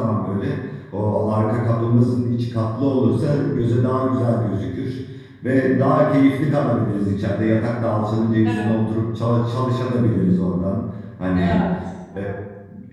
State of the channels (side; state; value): both; identical; correlation 1.00